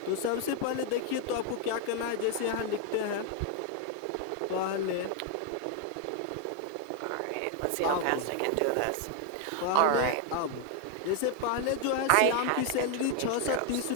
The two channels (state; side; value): different; both; correlation 0.00